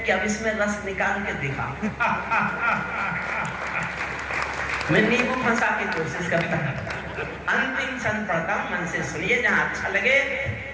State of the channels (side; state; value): both; identical; correlation 1.00